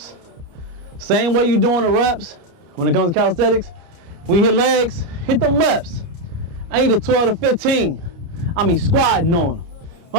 Same way you doing the reps when it comes to calisthenics. When you hit legs, hit them reps. I need a 12 to 15. I mean squatting on them.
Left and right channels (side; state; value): left; late; 29 ms